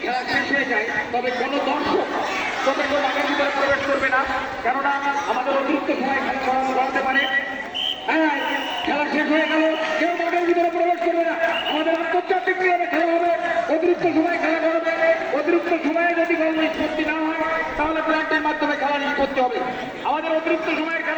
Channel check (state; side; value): identical; both; correlation 1.00